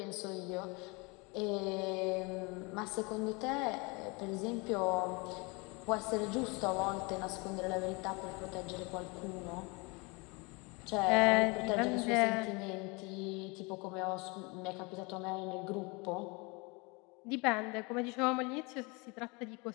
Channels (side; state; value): right; quieter; 28.4 dB